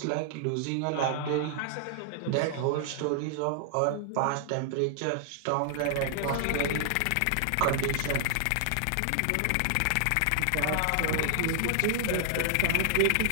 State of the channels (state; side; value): different; both; correlation -0.01